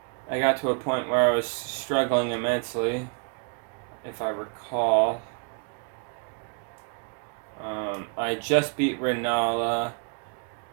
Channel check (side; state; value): left; quieter; 37.4 dB